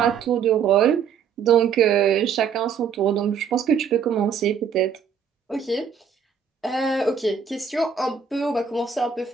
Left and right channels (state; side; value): quieter; left; 7.0 dB